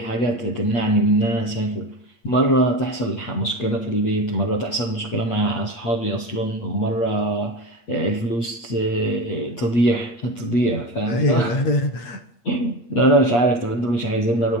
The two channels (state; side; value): late; right; 8.6 ms